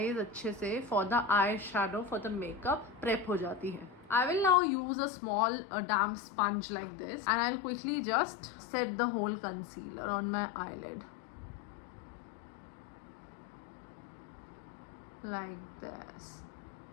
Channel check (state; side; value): drops out; right; at 4.5 s